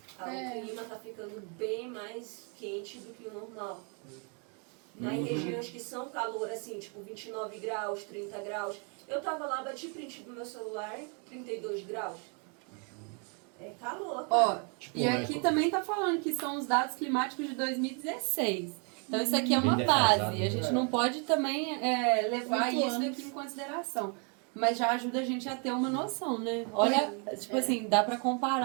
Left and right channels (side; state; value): left; quieter; 37.3 dB